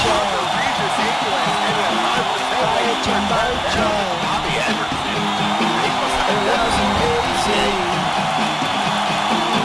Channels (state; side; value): identical; both; correlation 1.00